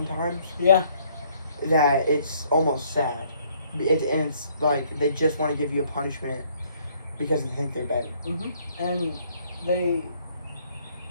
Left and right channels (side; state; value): both; inverted; correlation -0.64